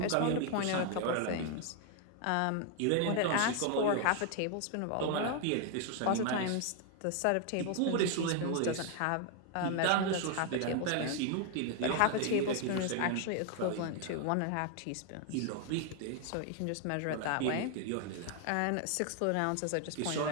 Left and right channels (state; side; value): different; both; correlation 0.00